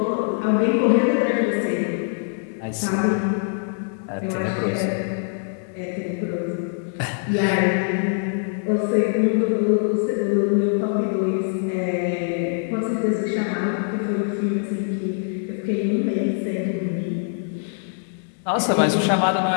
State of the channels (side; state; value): right; silent; 63 dB below the other